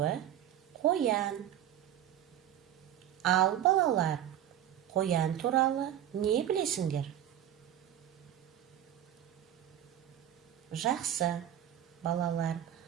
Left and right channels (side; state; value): left; quieter; 11.1 dB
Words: қоян. Ал балалар, қоян туралы не білесіңдер? Жақсы, балалар,